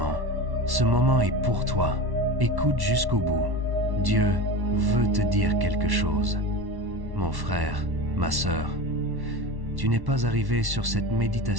Ce moment est pour toi. Écoute jusqu'au bout. Dieu veut te dire quelque chose. Mon frère, ma sœur, tu n'es pas arrivé sur cette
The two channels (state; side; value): late; left; 1.1 ms